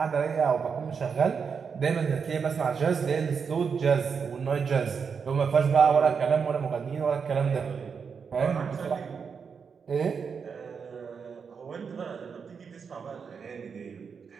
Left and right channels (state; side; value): quieter; left; 6.1 dB